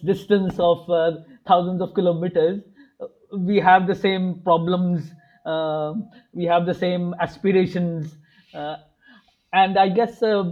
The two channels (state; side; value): identical; both; correlation 1.00